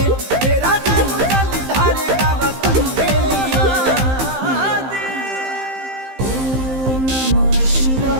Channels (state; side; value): late; left; 15 ms